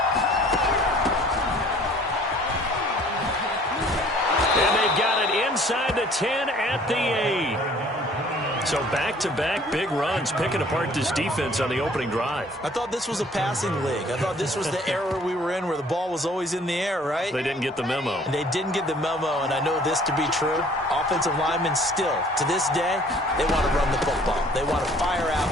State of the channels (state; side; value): normal; both; correlation 0.55